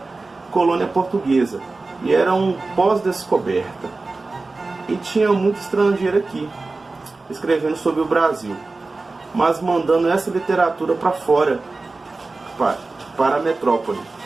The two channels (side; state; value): left; quieter; 3.5 dB